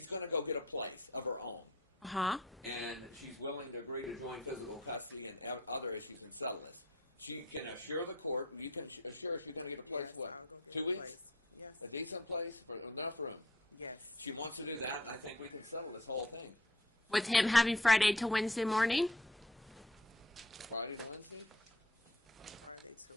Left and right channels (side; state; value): both; normal; correlation 0.53